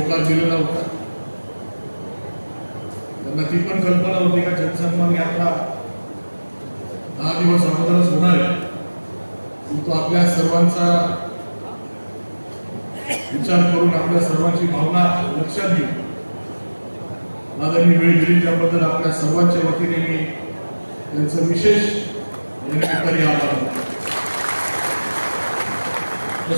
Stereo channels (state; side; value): inverted; both; correlation -1.00